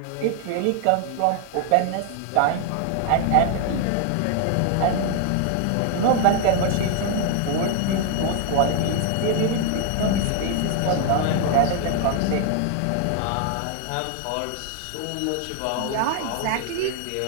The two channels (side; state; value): both; different; correlation 0.00